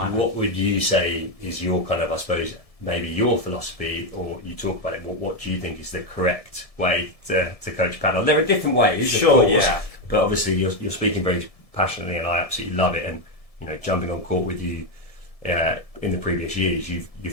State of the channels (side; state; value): right; late; 1.7 ms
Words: What would you say is your kind of, I suppose, maybe your philosophy, or you talk about it, what do you think is the correct way to coach paddle? There are different ways, sure, of course, yeah. But obviously you're speaking very passionately, and I absolutely love it. And you know, jumping on court with you in the previous years,